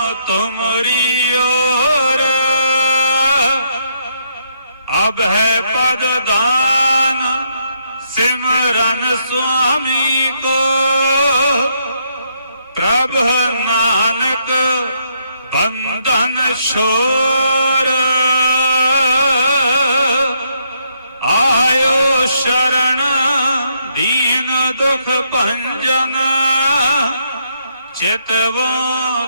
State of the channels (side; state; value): both; inverted; correlation -0.74